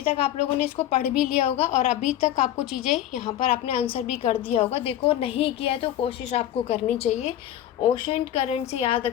तक आप लोगों ने इसको पढ़ भी लिया होगा और अभी तक आपको चीज़ें यहाँ पर आपने आंसर भी कर दिया होगा। देखो, नहीं किया है तो कोशिश आपको करनी चाहिए। ओशन करंट से याद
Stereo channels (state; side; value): quieter; right; 12.1 dB